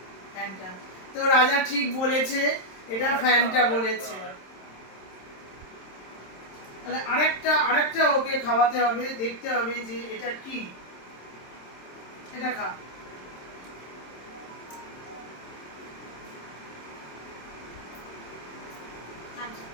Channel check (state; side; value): late; right; 26 ms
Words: ফ্যান্টা। তো রাজা ঠিক বলেছে, এটা ফ্যান্টা বলেছে। তাহলে আরেকটা ওকে খাওয়াতে হবে, দেখতে হবে যে এটা কি। এটা খা।